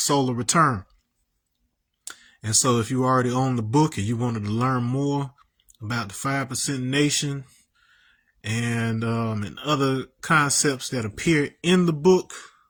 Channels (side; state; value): both; identical; correlation 1.00